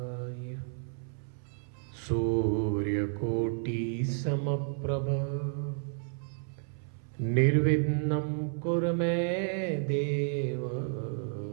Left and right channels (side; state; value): left; silent; 57 dB below the other